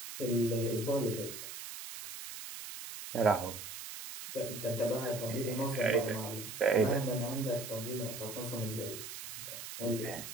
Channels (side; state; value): right; noise; hiss, 9 dB below the sound